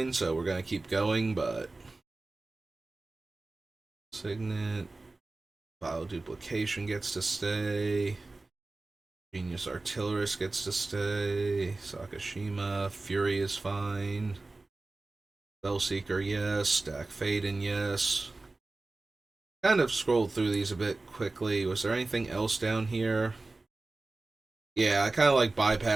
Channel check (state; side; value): quieter; left; 3.2 dB